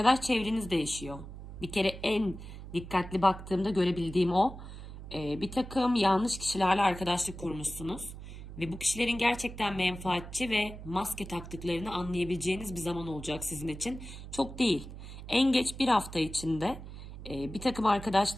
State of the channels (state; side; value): noise; right; hum, 12 dB below the sound